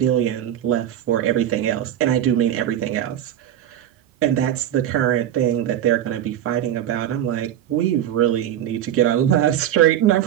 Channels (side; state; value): left; quieter; 11.2 dB